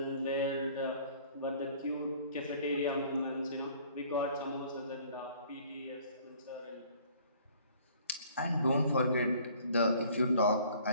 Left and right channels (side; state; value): both; inverted; correlation -0.55